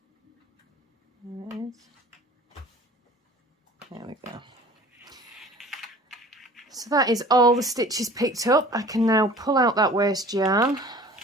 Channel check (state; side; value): normal; both; correlation 0.45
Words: There it is. There we go. So that is all the stitches picked up. I can now pull out that waste yarn.